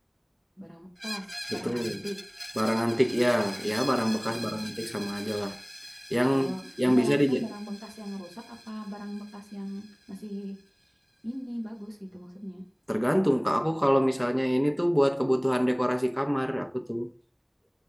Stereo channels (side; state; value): both; identical; correlation 1.00